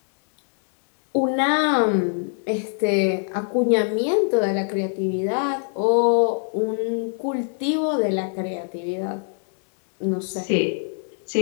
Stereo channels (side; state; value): right; silent; 56 dB below the other